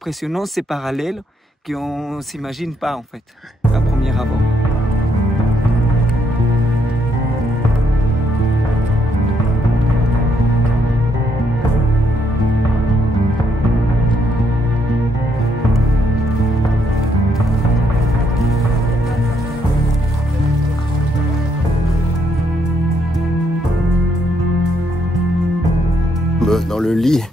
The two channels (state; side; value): normal; both; correlation 0.74